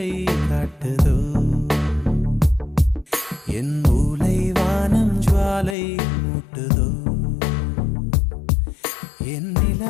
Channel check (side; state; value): right; drops out; at 5.8 s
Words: காட்டுதோ என் மூளை வானம் ஜுவாலை மூட்டுதோ என்